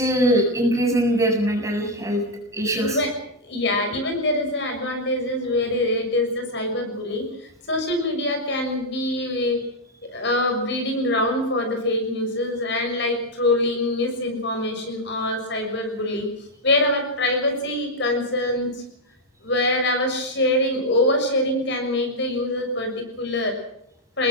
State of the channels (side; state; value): both; normal; correlation 0.00